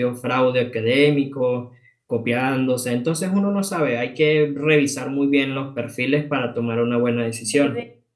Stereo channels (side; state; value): both; identical; correlation 1.00